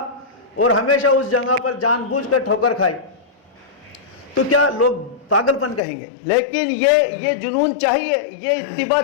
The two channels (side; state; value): right; drops out; at 5.8 s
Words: اور ہمیشہ اس جگہ پر جان بوجھ کر ٹھوکر کھائی، تو کیا لوگ پاگل پن کہیں گے؟ لیکن یہ جنون چاہیے، یہ اتباع